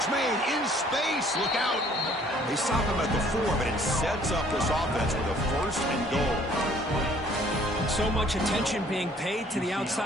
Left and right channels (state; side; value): normal; both; correlation 0.58